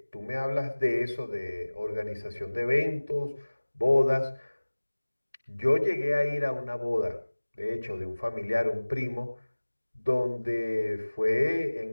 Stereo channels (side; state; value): both; inverted; correlation -1.00